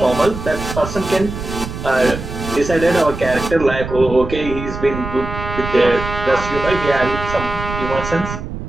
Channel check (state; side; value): noise; right; rumble, 8 dB below the sound